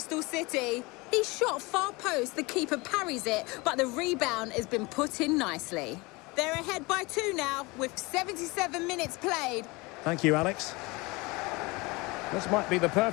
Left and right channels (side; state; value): right; quieter; 24.6 dB